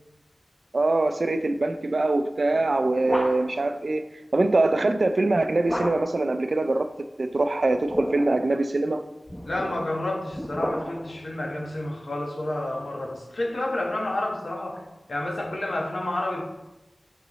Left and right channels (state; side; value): normal; both; correlation 0.97